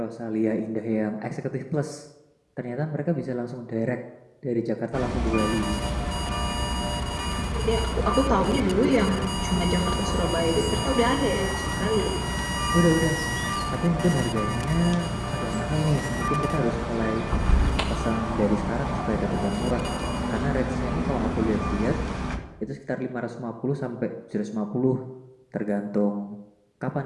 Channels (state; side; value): identical; both; correlation 1.00